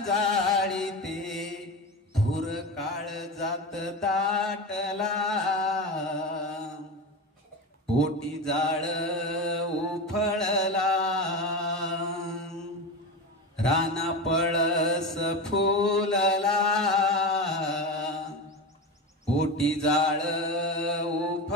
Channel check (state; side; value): normal; both; correlation 0.23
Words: जाळीते। धूर काळ जात दाटला, ओटी जाळ उफळला। राना पळस फुलला, ओटी जाळ